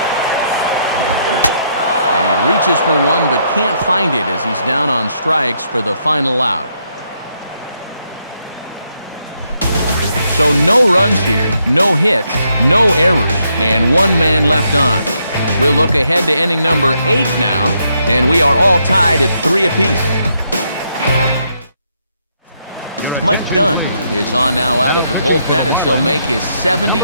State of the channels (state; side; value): inverted; both; correlation -0.76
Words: And he reaches for one but can't find it as he's down on strikes for the final out. So no runs here, no hits, no errors, and one man left on. We'll look ahead to inning number 8 now, and we are all tied at 3 apiece. Mike Dunn is on now out of the bullpen as he'll make his